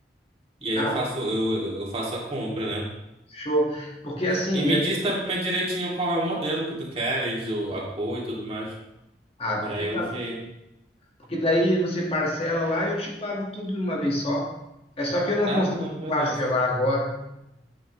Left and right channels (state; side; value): normal; both; correlation 0.47